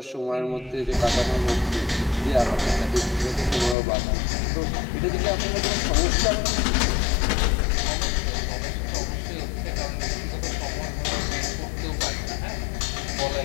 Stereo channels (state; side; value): drops out; right; at 3.8 s